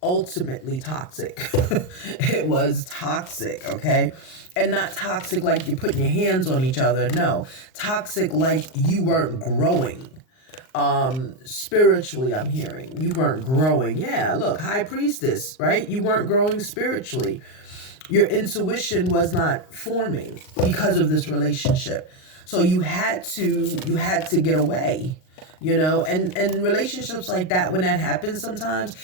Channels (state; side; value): late; right; 38 ms